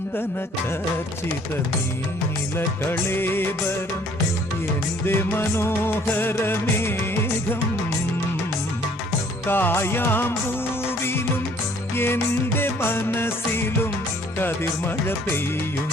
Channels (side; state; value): both; normal; correlation 0.58